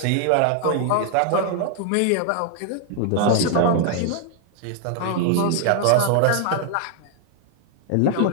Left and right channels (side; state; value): both; different; correlation 0.00